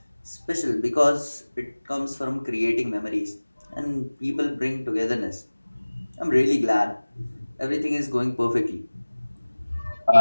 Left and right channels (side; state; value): both; inverted; correlation -1.00